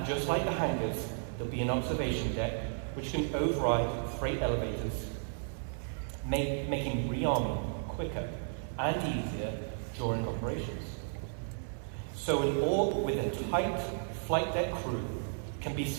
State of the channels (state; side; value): silent; left; digital silence